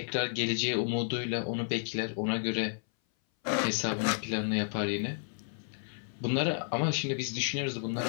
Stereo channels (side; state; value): right; silent; 57 dB below the other